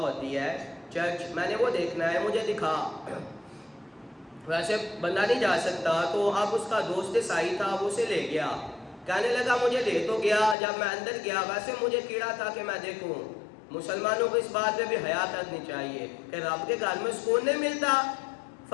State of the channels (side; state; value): right; drops out; at 10.6 s